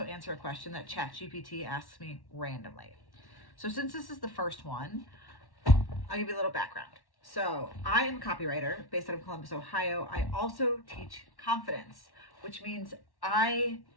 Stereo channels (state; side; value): late; right; 1.1 ms